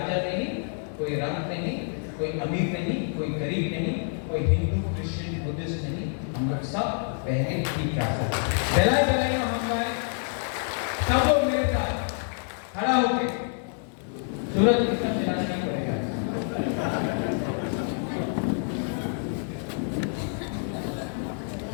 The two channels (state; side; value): silent; right; 60 dB below the other